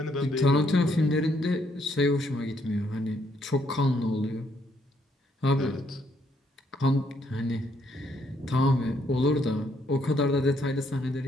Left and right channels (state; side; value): normal; both; correlation 0.71